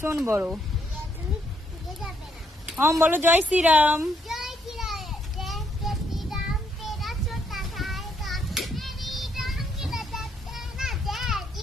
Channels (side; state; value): both; normal; correlation 0.73